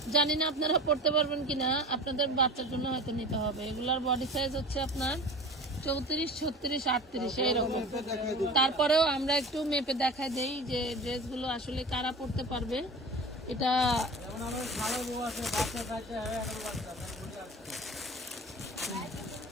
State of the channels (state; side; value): normal; both; correlation 0.36